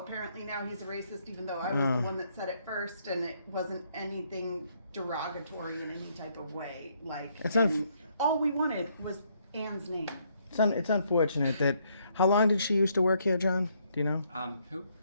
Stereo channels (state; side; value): inverted; both; correlation -0.71